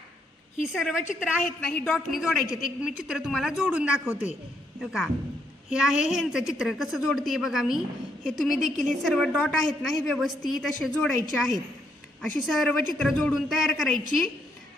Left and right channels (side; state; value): both; normal; correlation 0.75